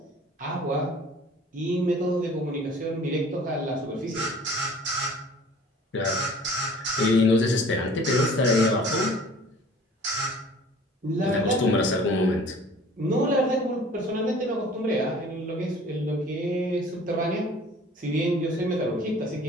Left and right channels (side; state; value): both; normal; correlation 0.49